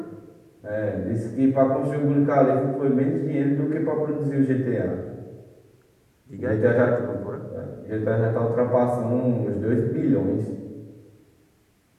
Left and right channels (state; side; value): identical; both; correlation 1.00